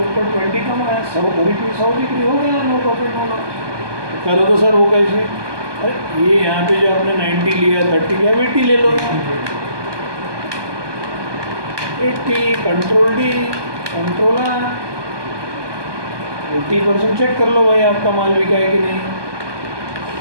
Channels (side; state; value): left; late; 1.2 ms